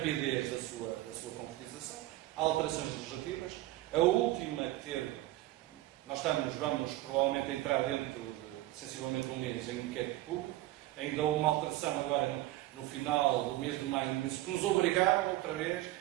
da sua concretização, há alterações legislativas. A última que teve, vamos provavelmente entrar dentro de sensivelmente um mês em inquérito público. Ainda houve uma alteração agora no final do mês de maio, que nos obrigaram outra vez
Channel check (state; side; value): quieter; left; 16.7 dB